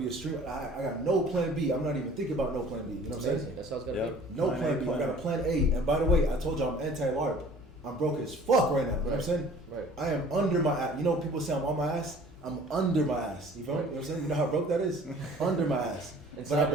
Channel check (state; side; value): normal; both; correlation 0.50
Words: a streamer. I got no plan B. I'm not even thinking about no plan B. You know what I'm saying? Amazing. That's how it's gotta Yeah. be. No Plan plan A, B. plan I got A. a plan A. And by the way, I told you I'm anti-LARP. I'm broke as fuck right now. You know what I'm saying? Right. I am under my ass. You know, people say I'm on my ass. I'm under my ass. You feel me? You know what I'm saying? You know how broke that is? Under my ass. But I